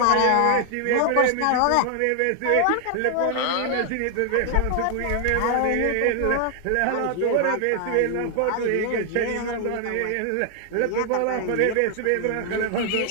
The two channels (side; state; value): both; different; correlation 0.00